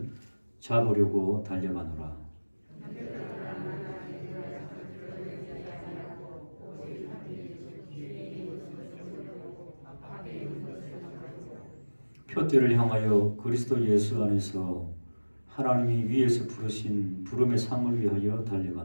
잡으려고 달려가노라. 표대를 향하여 그리스도 예수 안에서 하나님이 위에서 부르신 부름의 상을 위하여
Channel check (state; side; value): inverted; both; correlation -1.00